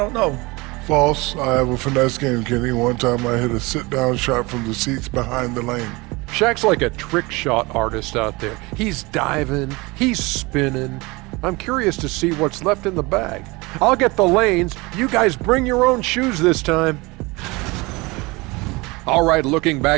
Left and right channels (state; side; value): quieter; left; 24.3 dB